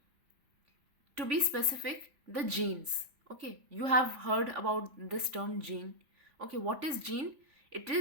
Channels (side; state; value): left; late; 3.5 ms